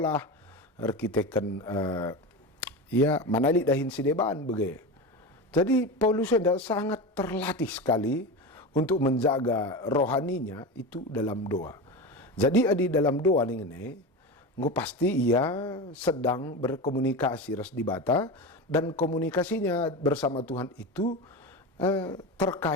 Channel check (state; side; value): normal; both; correlation 0.23